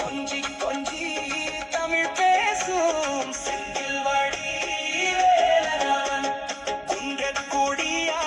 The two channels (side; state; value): both; identical; correlation 1.00